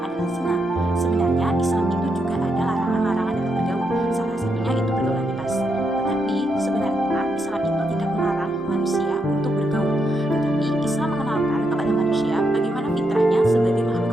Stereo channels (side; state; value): both; normal; correlation 0.81